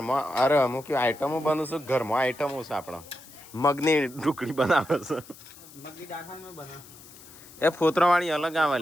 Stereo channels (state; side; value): noise; left; hiss, 20 dB below the sound